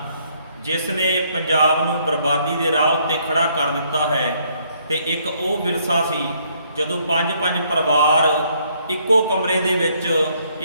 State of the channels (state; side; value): inverted; both; correlation -0.68